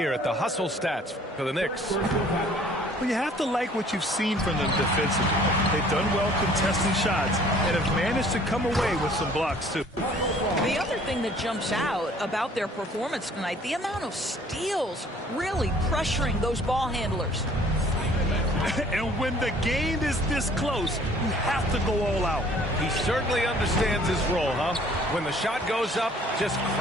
at the hustle stats for the Knicks. Well, you have to like what you've seen from them defensively. They've done well contesting shots and have managed to come away with some blocks, too. The other thing that jumps out about their performance tonight, the amount of steals really pressuring those ball handlers. And when the game is this close, you have to go all out. He certainly understands his role, huh? When the shot goes up, just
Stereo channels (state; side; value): normal; both; correlation 0.55